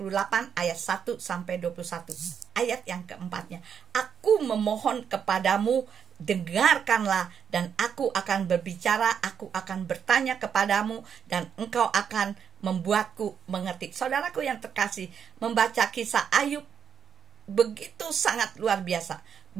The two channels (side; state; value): left; quieter; 7.6 dB